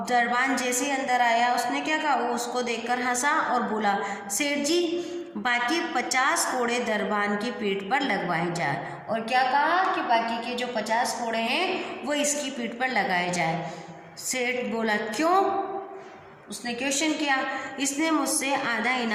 दरबान जैसे ही अंदर आया, उसने क्या कहा? वो उसको देखकर हंसा और बोला, सेठ जी, बाकी 50 कोड़े दरबान की पीठ पर लगवाए जाए। और क्या कहा कि बाकी के जो 50 कोड़े हैं वो इसकी पीठ पर लगाए जाए। सेठ बोला, क्यों? उसने क्वेश्चन किया। इसने मुझसे आधा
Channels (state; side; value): identical; both; correlation 1.00